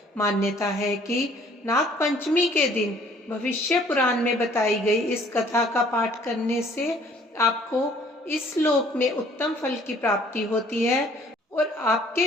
मान्यता है कि नाग पंचमी के दिन भविष्य पुराण में बताई गई इस कथा का पाठ करने से आपको इस लोक में उत्तम फल की प्राप्ति होती है और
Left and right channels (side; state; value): both; normal; correlation 0.57